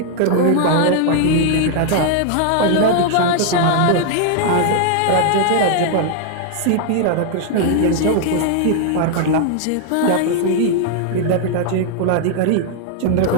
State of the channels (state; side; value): different; both; correlation 0.00